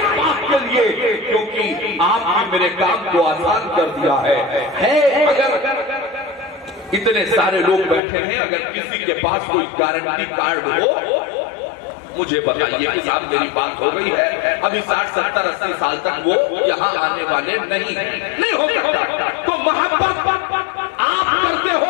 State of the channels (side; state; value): right; drops out; at 8.0 s